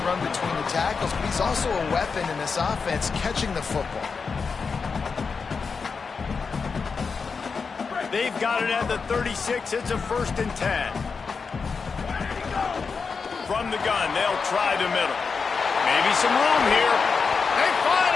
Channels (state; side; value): quieter; right; 5.1 dB